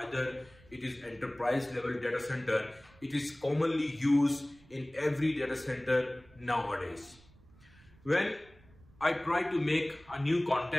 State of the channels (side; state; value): right; noise; rumble, 26 dB below the sound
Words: either it is enterprise level data center. It is commonly used in every data center nowadays. When I try to make a new